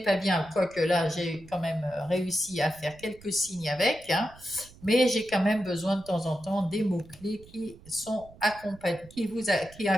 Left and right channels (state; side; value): noise; right; rumble, 22 dB below the sound